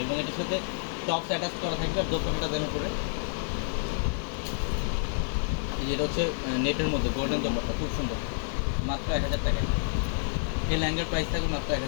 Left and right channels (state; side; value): silent; right; 59 dB below the other